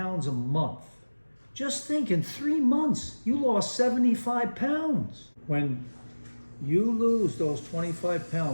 a month, just think in 3 months, you lost 75 pounds. When you lose those 25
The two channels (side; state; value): both; inverted; correlation -1.00